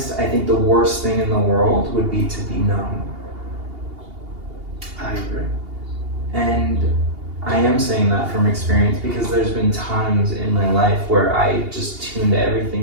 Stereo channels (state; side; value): late; left; 2.8 ms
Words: I think the worst thing in the world would be to be numb. I agree. And I am saying that from experience because there's been times in my life where I just tuned